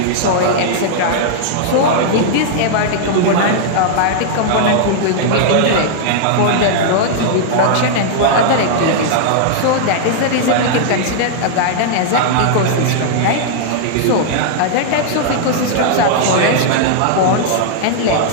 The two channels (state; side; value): different; both; correlation -0.01